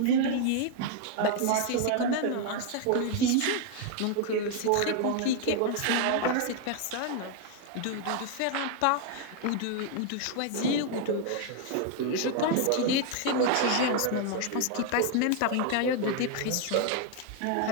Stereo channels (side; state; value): both; different; correlation 0.00